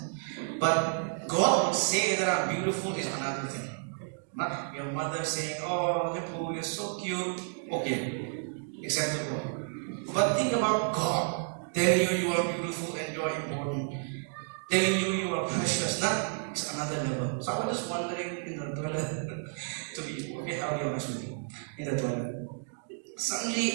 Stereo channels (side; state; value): left; silent; 57 dB below the other